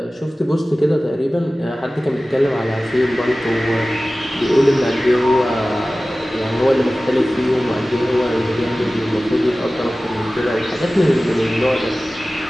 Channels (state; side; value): normal; both; correlation 0.97